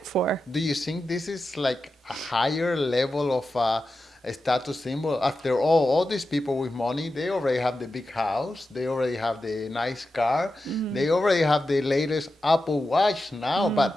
for? Do you think this is like a higher level of a status symbol? After all these people with money, they already have the big house, they already have the nice car, Mm, they already have the latest Apple Watch now, mm,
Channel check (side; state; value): both; normal; correlation 0.91